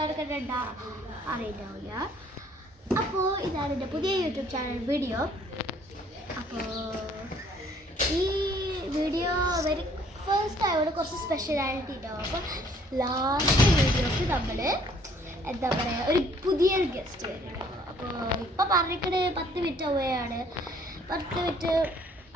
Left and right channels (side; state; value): both; normal; correlation 0.60